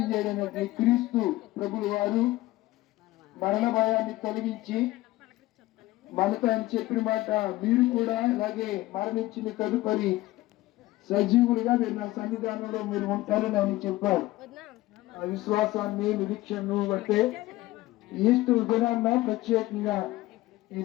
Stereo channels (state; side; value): quieter; right; 17.7 dB